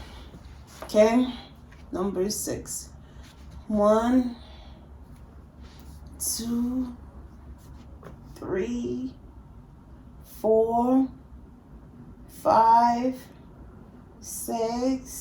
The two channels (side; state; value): both; identical; correlation 1.00